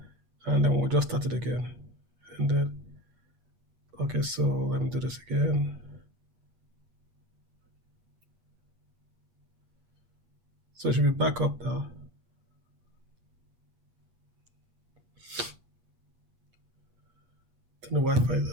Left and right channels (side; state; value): left; late; 8.4 ms